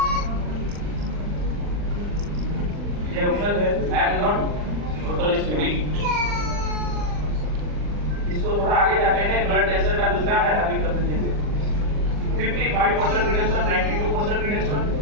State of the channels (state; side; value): late; left; 40 ms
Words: ये ऑप्शन है, I am not totally studding. इसको थोड़ा आगे जाते हैं, ब्लड कैंसर का दूसरा है, अभी कर देंगे। 55% रिडक्शन, 92% रिडक्शन।